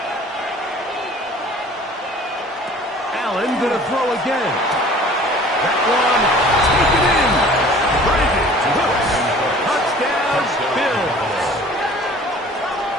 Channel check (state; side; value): normal; both; correlation 0.48